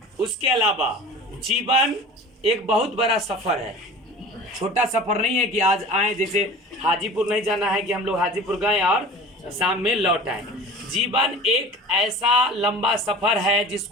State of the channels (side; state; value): both; normal; correlation 0.40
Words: उसके अलावा जीवन एक बहुत बड़ा सफर है, छोटा सफर नहीं है कि आज आए, जैसे हाजीपुर नहीं जाना है कि हम लोग हाजीपुर गए और शाम में लौट आए। जीवन एक ऐसा लंबा सफर है